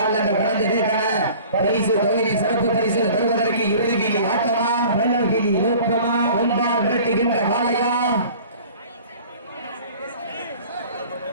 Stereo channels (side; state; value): both; inverted; correlation -0.46